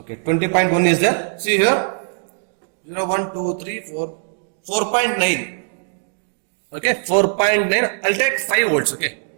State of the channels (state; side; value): silent; left; digital silence